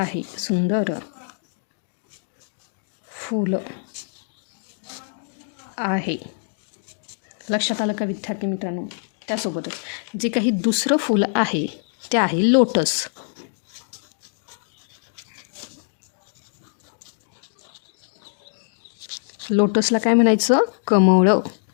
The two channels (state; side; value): silent; right; digital silence